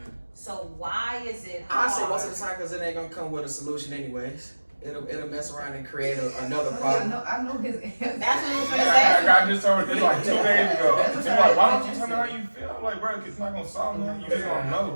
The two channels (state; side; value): inverted; both; correlation -1.00